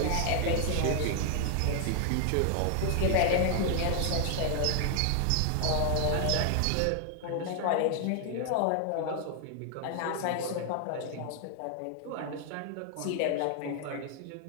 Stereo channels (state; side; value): different; both; correlation 0.00